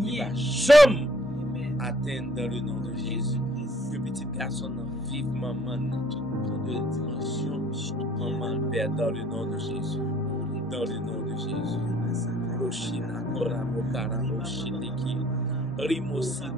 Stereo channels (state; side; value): normal; both; correlation 0.60